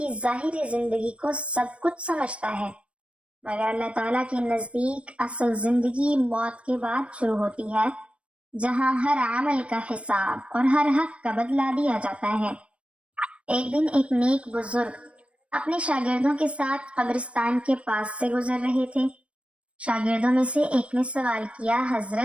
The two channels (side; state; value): left; late; 0.061 ms